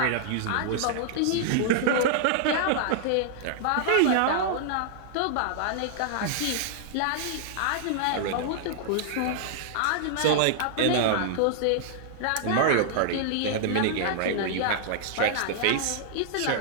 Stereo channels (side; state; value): both; different; correlation -0.01